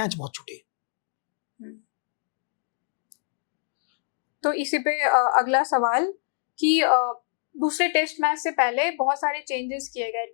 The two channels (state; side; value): silent; right; digital silence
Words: बहुत छूटे। तो इसी पे अगला सवाल कि दूसरे टेस्ट मैच से पहले बहुत सारे चेंजेस किए गए